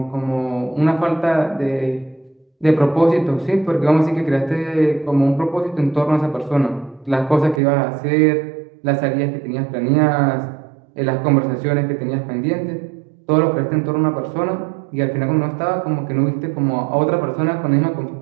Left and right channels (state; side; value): drops out; left; at 7.6 s